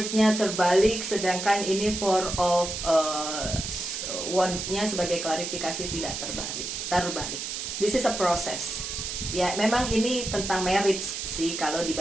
terbalik, sedangkan ini Four of Wand-nya sebagai klarifikasi tidak terbalik. This is a process. Ya, memang ini tentang marriage sih kalau di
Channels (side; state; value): right; noise; hiss, 5 dB below the sound